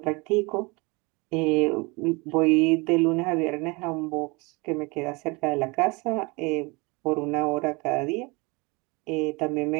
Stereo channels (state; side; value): quieter; left; 27.1 dB